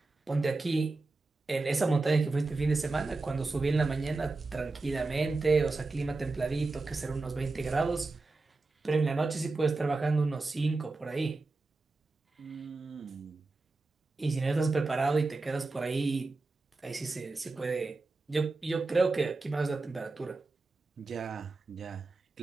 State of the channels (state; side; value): quieter; left; 3.5 dB